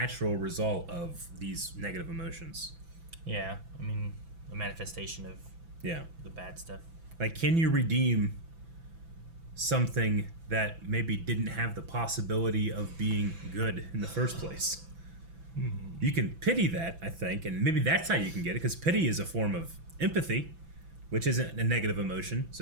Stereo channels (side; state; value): left; late; 6.0 ms